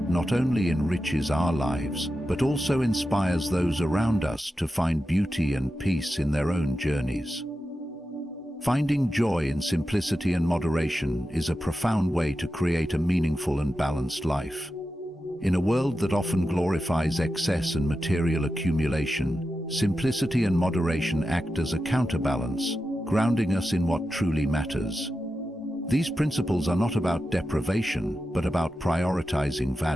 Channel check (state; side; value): normal; both; correlation 0.91